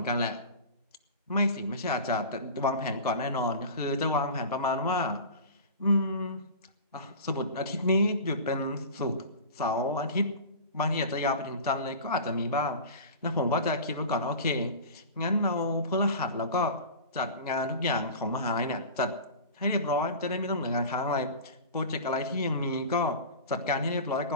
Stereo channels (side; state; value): both; inverted; correlation -0.34